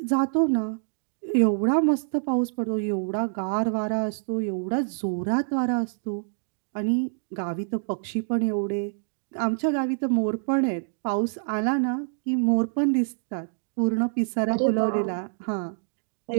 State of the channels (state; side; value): silent; left; digital silence